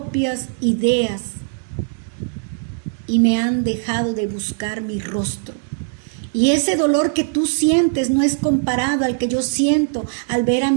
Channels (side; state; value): left; silent; digital silence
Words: ideas y me han dejado de buscar mi rostro. Y ese dolor que tú sientes no es comparado al que yo siento al ver a